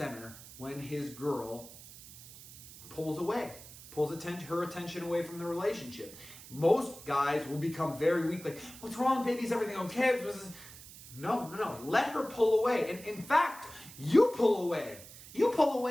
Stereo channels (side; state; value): right; noise; hiss, 17 dB below the sound